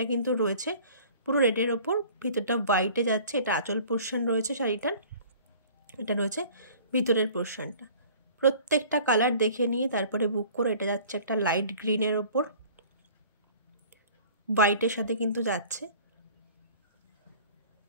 কিন্তু রয়েছে পুরো রেডের ওপর, ভিতরটা হোয়াইটে যাচ্ছে। এটা আঁচল পোর্শন রয়েছে শাড়িটার, এটা রয়েছে ভিতরের পোর্শনটা। প্রত্যেকটা কালার দেখে নিয়ে তারপরে বুক করো। এটা যাচ্ছে একটা লাইট গ্রিনের ওপর, হোয়াইটের সাথে কিন্তু যাচ্ছে।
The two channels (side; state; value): both; inverted; correlation -0.48